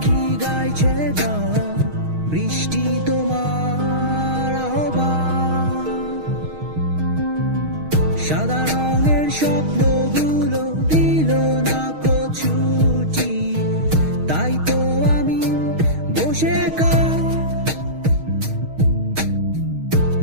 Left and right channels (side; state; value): left; late; 6.4 ms